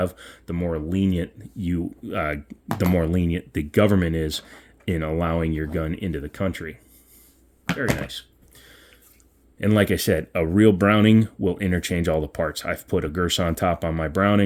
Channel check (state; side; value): identical; both; correlation 1.00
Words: the more lenient the government is in allowing your gun into the country. Very nice. And like I said, a real Browning will interchange all the parts. I've put a Girsan top on my